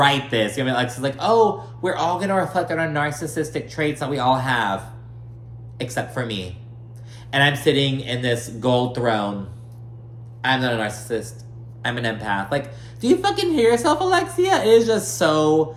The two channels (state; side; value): identical; both; correlation 1.00